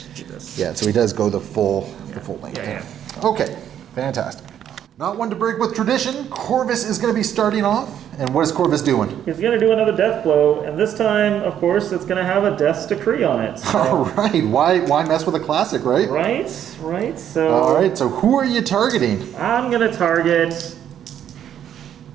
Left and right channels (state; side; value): quieter; left; 9.9 dB